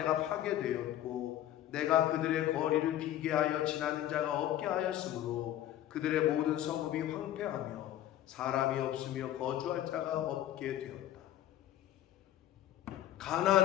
파괴되었고 내가 그들의 거리를 비게 하여 지나는 자가 없게 하였으므로 그들의 모든 성읍이 황폐하며 사람이 없으며 거주할 자가 없게 되었다.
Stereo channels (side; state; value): right; quieter; 12.7 dB